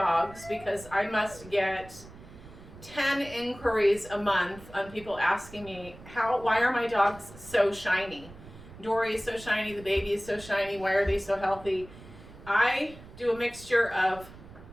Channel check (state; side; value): noise; right; rumble, 18 dB below the sound